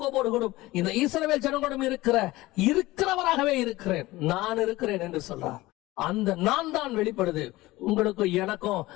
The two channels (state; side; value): quieter; right; 18.9 dB